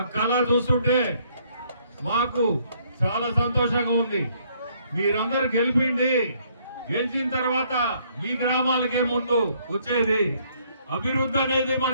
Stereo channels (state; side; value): inverted; both; correlation -0.67